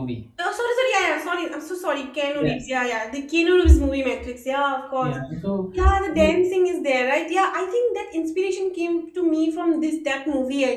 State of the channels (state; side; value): identical; both; correlation 1.00